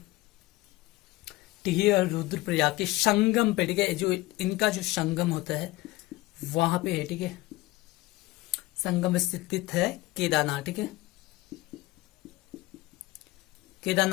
टिहरी और रुद्रप्रयाग के संगम पे, ठीक है, जो इनका जो संगम होता है वहां पे है, ठीक है। संगम स्थित है केदारनाथ, ठीक है।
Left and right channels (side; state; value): right; quieter; 19.5 dB